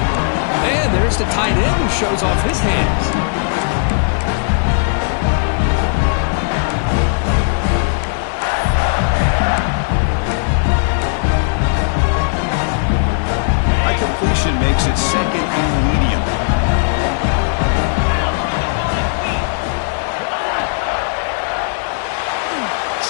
And there's the tight end who shows off his hands. High completion makes it 2nd and medium.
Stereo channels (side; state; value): right; silent; digital silence